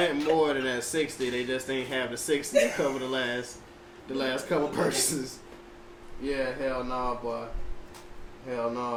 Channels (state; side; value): identical; both; correlation 1.00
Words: more than that 60, they just ain't have the 60 to cover the last couple purchases. Yeah, hell no, boy. Hell